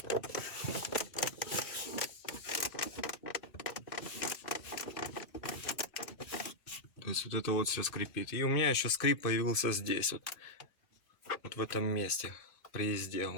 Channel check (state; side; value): late; right; 3.5 ms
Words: То есть вот это вот все скрипит. И у меня еще скрип появился здесь, вот в этом месте, при езде.